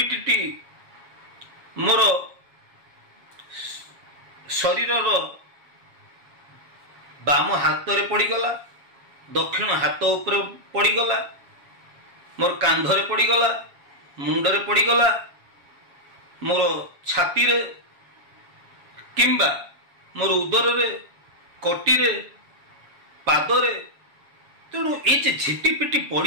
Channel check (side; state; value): left; late; 7.2 ms